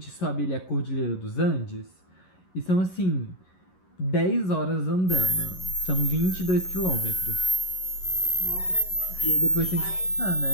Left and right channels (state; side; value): late; right; 11 ms